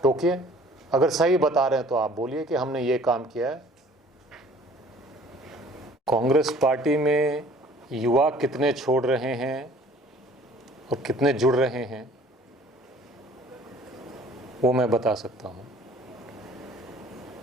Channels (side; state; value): both; normal; correlation 0.52